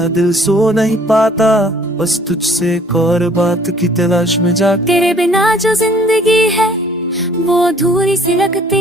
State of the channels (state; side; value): normal; both; correlation 0.57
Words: दिल सो नहीं पाता बस तुझसे एक और बात की तलाश में जा। तेरे बिना जो जिंदगी है वो अधूरी सी